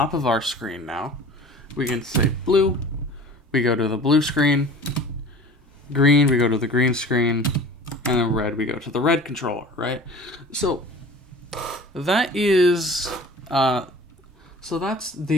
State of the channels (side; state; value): both; normal; correlation 0.42